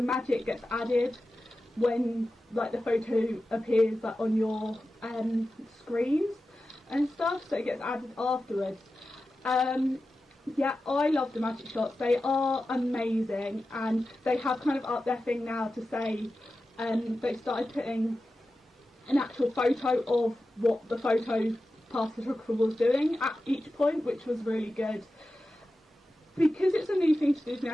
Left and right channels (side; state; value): both; normal; correlation 0.93